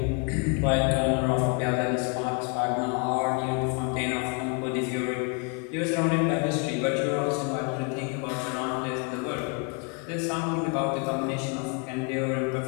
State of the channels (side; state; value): right; quieter; 34.6 dB